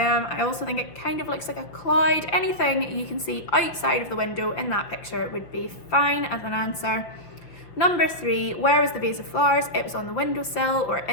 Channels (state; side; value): late; right; 6.2 ms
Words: also think it kind of looks like a cloud. Anything you can see outside of the window in that picture would be fine as an answer. Number 3, where was the vase of flowers? It was on the windowsill or